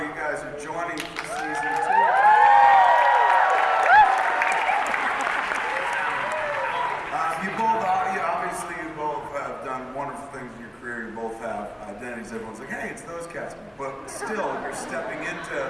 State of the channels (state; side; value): identical; both; correlation 1.00